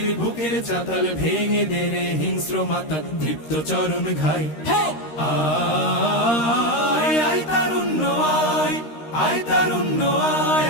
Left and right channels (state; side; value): late; right; 13 ms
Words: বুকের চাতাল ভেঙে দেরে হিংস্র মাতা তৃপ্ত চরণ ঘাই। আয় আয় তারুণ্য আয়, আয় তারুণ্য আয়